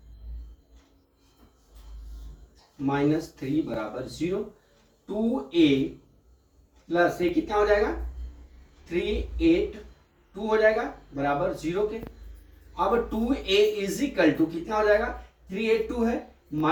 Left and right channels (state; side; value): identical; both; correlation 1.00